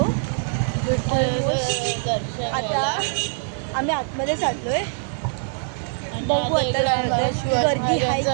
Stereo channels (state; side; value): silent; left; digital silence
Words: आता आम्ही आतमध्ये चाललोय. बघू आता गर्दी आहे